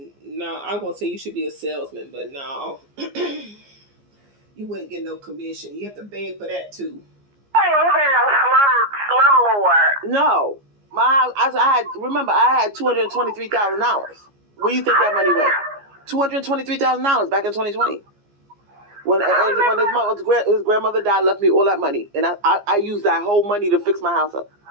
no, I'm going to say you should be a salesman, but no. You wouldn't get no commission. You have to beg for that too. You ain't living in no slum lord. No. I had $223,000. Where you think that money went? $223,000 back in 2020. When his grandmother died, left me all that money. And I used that whole money to fix my house up.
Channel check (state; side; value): late; left; 14 ms